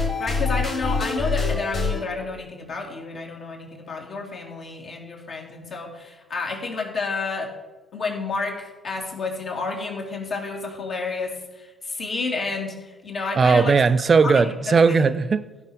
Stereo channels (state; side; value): normal; both; correlation 0.79